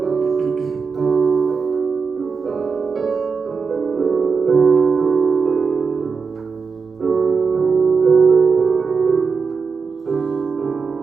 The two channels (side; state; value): left; quieter; 5.2 dB